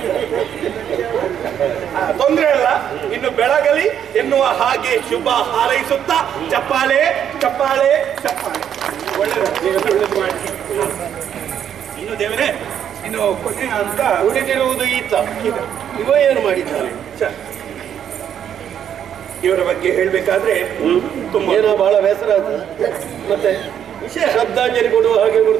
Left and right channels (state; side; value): quieter; left; 9.2 dB